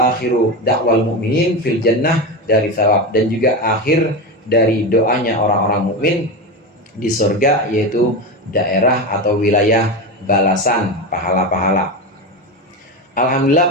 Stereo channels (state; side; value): normal; both; correlation 0.19